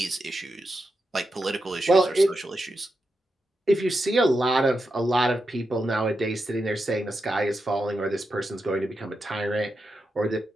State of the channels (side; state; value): both; normal; correlation 0.87